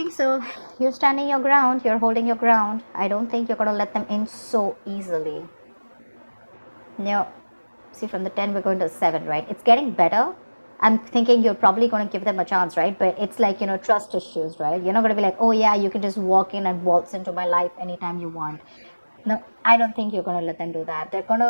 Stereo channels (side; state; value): both; inverted; correlation -1.00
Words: so. You're standing your ground. You're holding your ground. I don't think you're going to let them in so easily. No. See, from the 10, we're going to 7, right? It's getting better. I'm thinking you're probably going to give them a chance, right? But it's like, trust issues, right? You're not going to be like, oh yeah, you can just walk in and waltz into my life anytime you want. No, I don't think you're going to let them do that. They're going